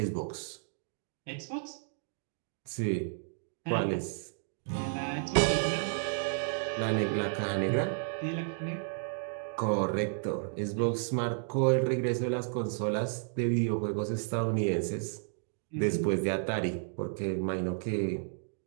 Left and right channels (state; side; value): silent; left; digital silence